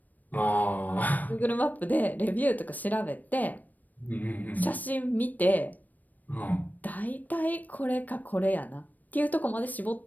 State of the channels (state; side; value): late; right; 0.083 ms